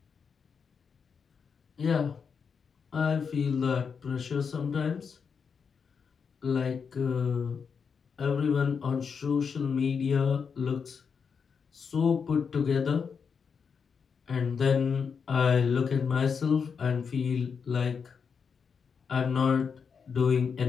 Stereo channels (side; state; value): right; quieter; 6.1 dB